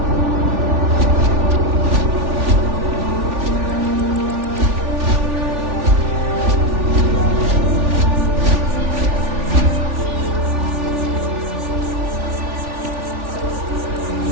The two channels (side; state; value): left; late; 3.4 ms